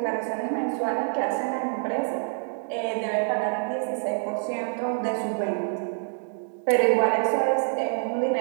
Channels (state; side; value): silent; left; digital silence